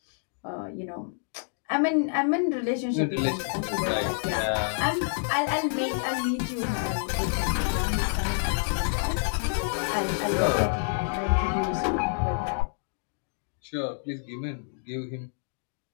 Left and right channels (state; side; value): silent; right; digital silence